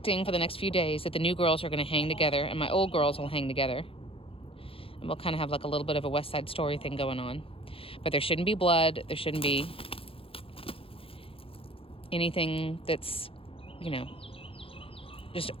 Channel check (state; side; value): late; right; 0.27 ms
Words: for the next few days that the new girls are going to hang together and my old girls will hang together. And we'll kind of have like a little bit of a West Side Story thing going on. But there shouldn't be blood. There shouldn't be anything that's, you know, just